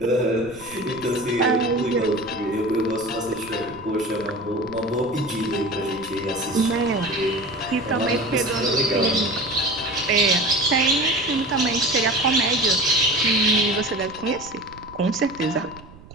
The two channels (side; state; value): right; noise; rumble, 20 dB below the sound